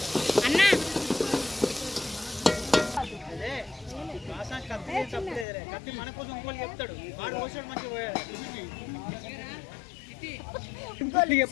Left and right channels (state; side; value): drops out; right; at 5.5 s